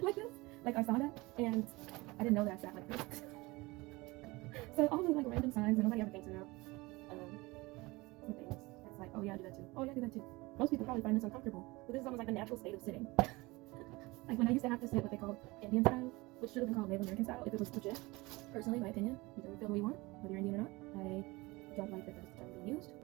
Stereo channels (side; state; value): left; quieter; 22.6 dB